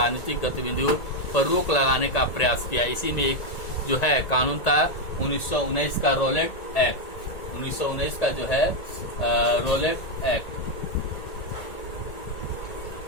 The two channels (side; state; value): right; late; 1.8 ms